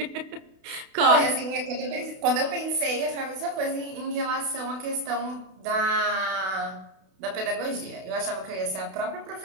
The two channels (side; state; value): left; late; 32 ms